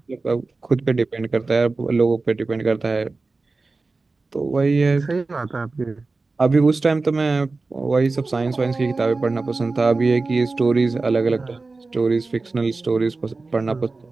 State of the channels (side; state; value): left; quieter; 3.7 dB